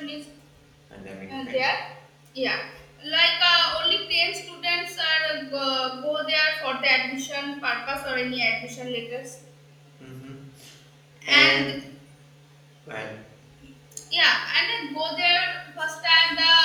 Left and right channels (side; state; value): both; identical; correlation 1.00